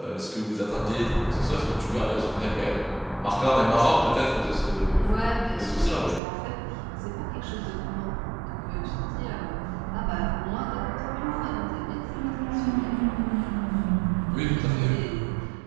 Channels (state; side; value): drops out; left; at 6.2 s